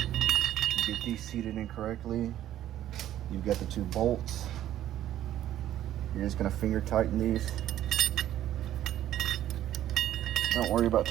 get these seated in correctly. You've got the 2 bolts. You're just gonna finger tighten these. Don't worry about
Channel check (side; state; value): left; quieter; 12.4 dB